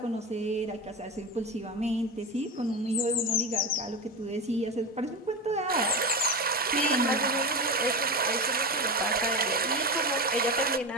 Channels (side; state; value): both; normal; correlation 0.21